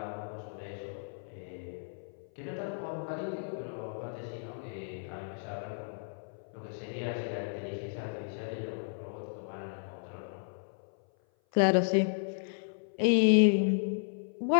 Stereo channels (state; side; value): silent; right; 55 dB below the other